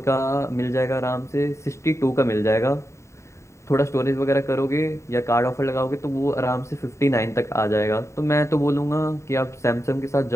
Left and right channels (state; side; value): late; right; 0.14 ms